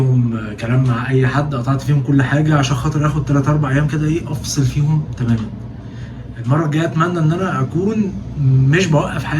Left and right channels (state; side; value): identical; both; correlation 1.00